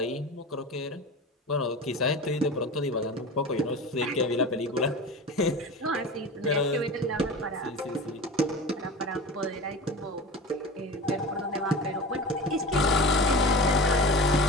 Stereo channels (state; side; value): normal; both; correlation 0.32